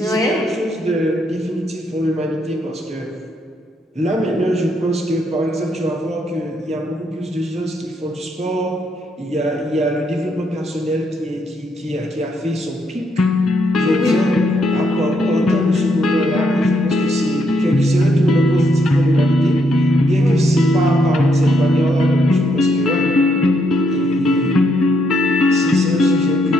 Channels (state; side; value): normal; both; correlation 0.75